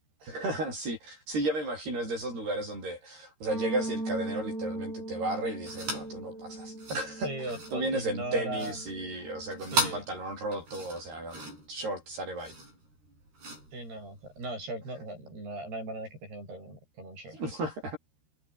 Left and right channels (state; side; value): late; left; 13 ms